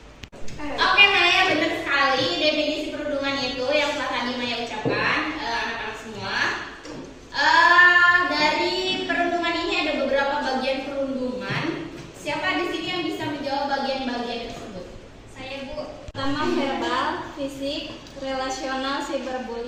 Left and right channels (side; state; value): both; identical; correlation 1.00